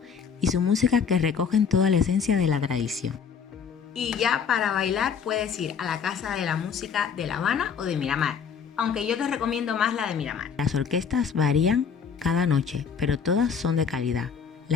y su música que recogen toda la esencia de la tradición. Y ya para bailar puedes ir a la Casa de la Música de La Habana o de Miramar, aunque yo te recomiendo más la de Miramar. Las orquestas varían cada noche, pero todas son de calidad.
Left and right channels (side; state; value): right; quieter; 6.6 dB